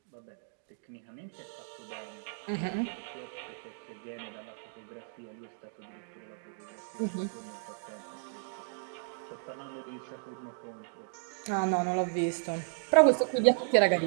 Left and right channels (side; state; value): left; silent; digital silence